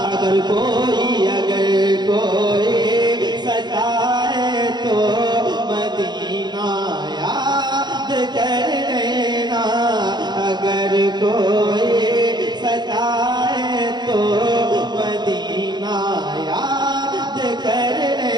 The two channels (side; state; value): left; late; 0.21 ms